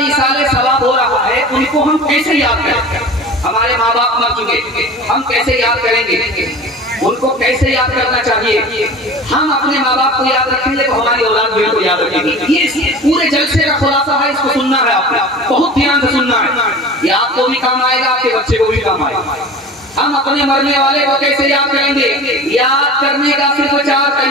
सवाब हो रहा है, उनको हम कैसे याद करें? हमारे माँ बाप मर चुके, हम कैसे याद करेंगे? उनको कैसे याद करना चाहिए? हम अपने माँ बाप को याद रखेंगे तो हमारी औलाद भी उनको याद रखेगी। ये पूरे जलसे का खुलासा है, इसको सुनना है आपने, बहुत ध्यान से सुनना है। ये आपको भी काम आएगा, आपके बच्चे को भी काम आएगा। हम अपने मरने वाले को कैसे याद करेंगे? याद करने का सिर्फ 4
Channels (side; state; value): both; normal; correlation 0.37